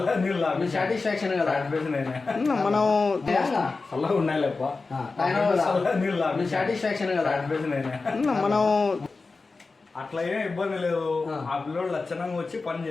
సాటిస్ఫాక్షన్ కదా మనం సాటిస్ఫాక్షన్ కదా మనం అట్లా ఏం ఇబ్బంది లేదు ఆ పిల్లోడు లక్షణంగా వచ్చి పని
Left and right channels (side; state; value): right; quieter; 3.9 dB